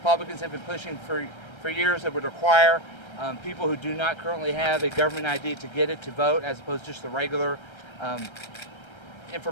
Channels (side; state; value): right; late; 1.3 ms